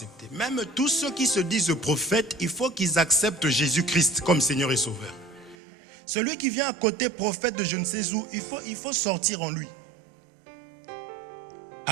Même tous ceux qui se disent prophètes, il faut qu'ils acceptent Jésus-Christ comme Seigneur et Sauveur. Celui qui vient à côté prophète de je ne sais où, il faut sortir en lui.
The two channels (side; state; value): left; drops out; at 5.6 s